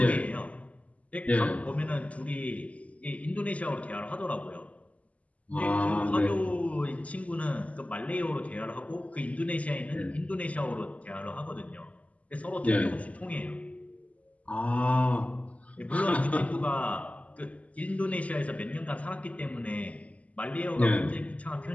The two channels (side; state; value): right; late; 0.068 ms